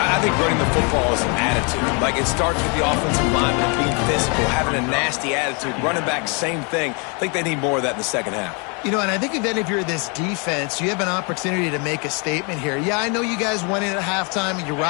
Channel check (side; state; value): right; quieter; 34.0 dB